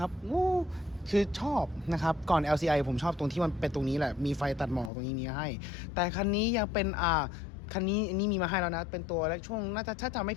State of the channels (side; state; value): right; drops out; at 4.9 s